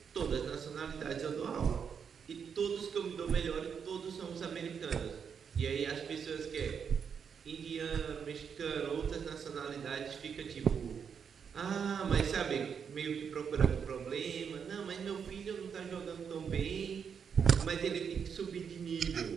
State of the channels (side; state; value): left; quieter; 6.9 dB